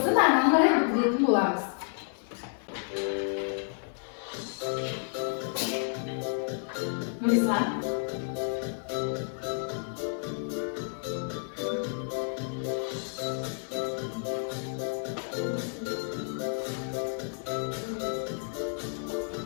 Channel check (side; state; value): right; silent; 57 dB below the other